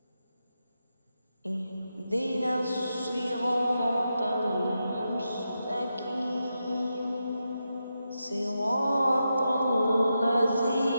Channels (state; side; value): inverted; both; correlation -0.87